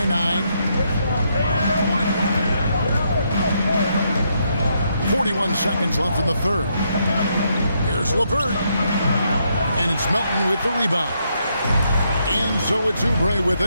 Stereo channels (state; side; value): inverted; both; correlation -0.77